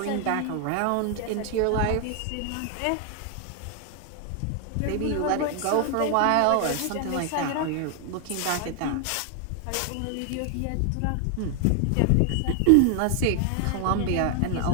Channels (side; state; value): both; different; correlation 0.00